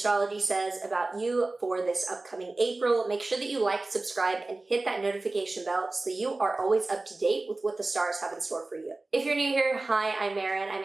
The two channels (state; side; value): quieter; left; 3.2 dB